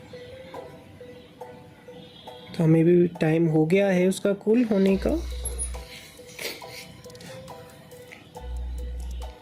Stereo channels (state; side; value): identical; both; correlation 1.00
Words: तो हमें भी टाइम हो गया है उसका कूल होने का।